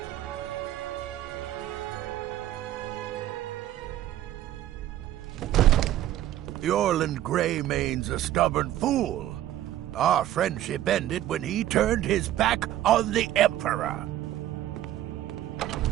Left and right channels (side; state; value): left; quieter; 13.1 dB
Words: The Orland Greymane's a stubborn fool. Our friendship ended when he turned his back on the Emperor.